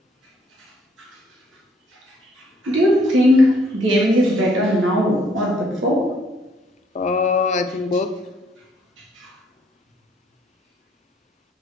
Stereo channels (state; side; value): normal; both; correlation 0.66